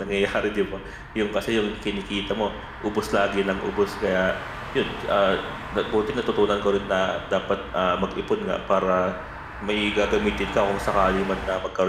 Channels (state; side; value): identical; both; correlation 1.00